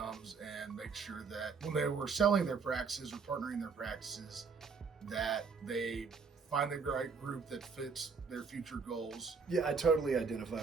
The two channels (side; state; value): left; quieter; 5.2 dB